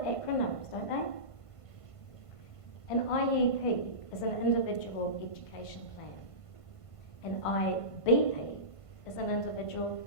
acronyms, don't they? An IEP is an individual education plan. An IBP is an individual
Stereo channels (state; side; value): late; right; 1.5 ms